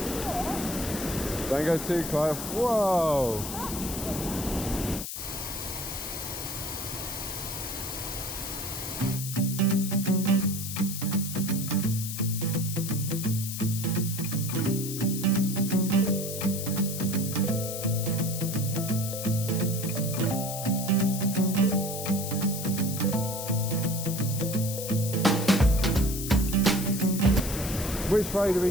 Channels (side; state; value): left; noise; hiss, 6 dB below the sound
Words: Don't go too close. Whoa. Which way do we